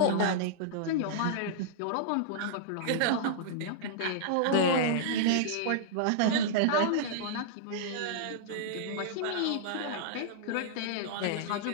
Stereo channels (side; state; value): both; different; correlation -0.02